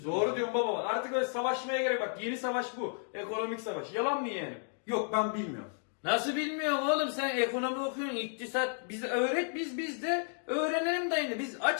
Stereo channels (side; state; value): right; silent; 56 dB below the other